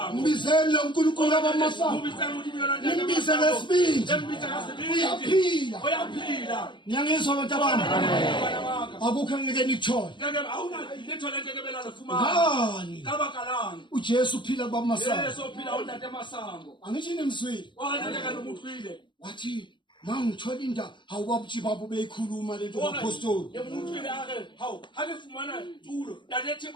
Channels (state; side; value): late; right; 0.23 ms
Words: mbizele lo nkulunkulu abamasango nimbize lesibindi uyaphila ngiyangizwa abantu abami akukho ngeke nikuthole ngani uJesu uphila baba masango angithi nemswili wathi mangithola indaba awubabutshi babo beyikhuluma lento apostoli